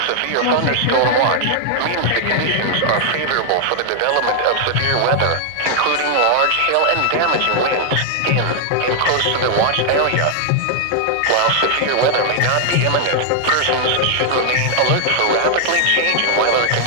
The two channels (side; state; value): both; different; correlation 0.00